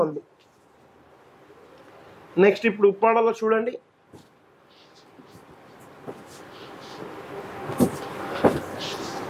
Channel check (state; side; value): identical; both; correlation 1.00